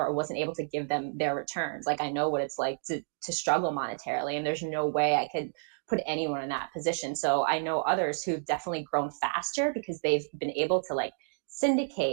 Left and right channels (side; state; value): left; silent; digital silence